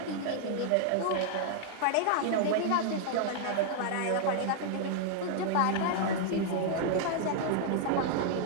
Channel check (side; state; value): both; different; correlation 0.00